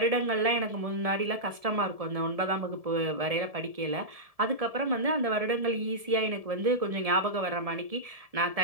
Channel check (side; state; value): left; late; 1.7 ms